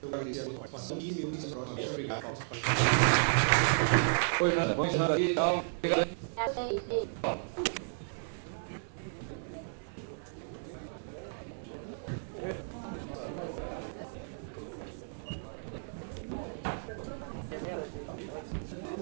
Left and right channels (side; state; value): left; silent; digital silence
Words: Eu agradeço a sua participação e me unisco próximo. Obrigado. Oi, Nanda. Vamos encerrar aqui. Tchau. Obrigado.